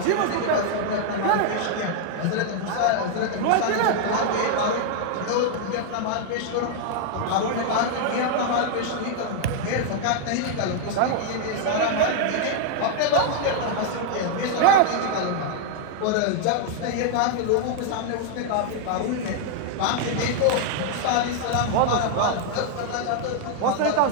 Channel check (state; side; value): different; both; correlation 0.00